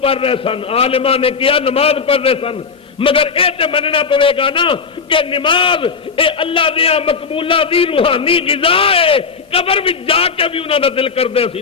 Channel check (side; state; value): right; quieter; 5.4 dB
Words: رہے سن، عالماں نے کیا نماز پڑھ رہے سن، مگر اے تے مننا پوے گا نا کہ نماز اے اللہ دیا مقبولہ دی روحانی غذا ہے، قبر وچ جا کے بھی انہاں دا دل کردے سی